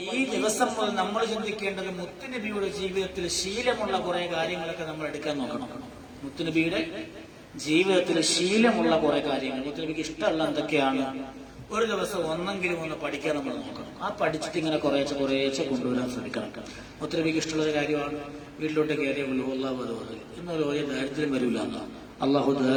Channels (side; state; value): both; identical; correlation 1.00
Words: ഈ ദിവസം മുതൽ നമ്മൾ ചിന്തിക്കേണ്ടത് മുത്തുനബിയുടെ ജീവിതത്തിൽ ശീലമുള്ള കുറെ കാര്യങ്ങളൊക്കെ നമ്മൾ എടുക്കാൻ നോക്കണം. മുത്തുനബിയുടെ ജീവിതത്തിൽ ശീലമുള്ള കുറെ കാര്യങ്ങൾ, മുത്തുനബിക്ക് ഇഷ്ടമുള്ള എന്തൊക്കെയാണ്, ഒരു ദിവസം ഒന്നെങ്കിലും ഒന്ന് പഠിക്കാൻ നമ്മൾ നോക്കണം. ആ പഠിച്ചിട്ട് ഇങ്ങനെ കുറേശ്ശെ കൊണ്ടുവരാൻ ശ്രമിക്കണം. മുത്തുനബിക്ക് ഇഷ്ടമുള്ളൊരു കാര്യമാണ് വീട്ടിലോട്ട് കയറിയ അല്ലാഹു അക്ബർ. ഇന്നൊരു വലിയ ദാരിദ്ര്യം വരില്ല എന്നാണ്. അള്ളാഹു